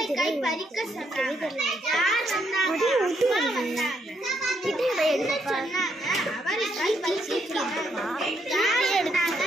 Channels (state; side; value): normal; both; correlation 0.76